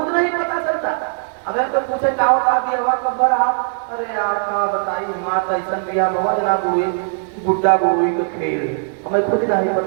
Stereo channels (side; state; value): left; silent; 63 dB below the other